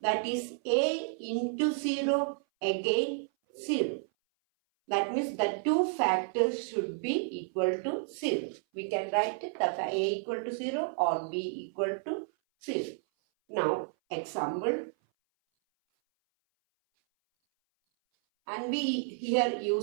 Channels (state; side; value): silent; left; 57 dB below the other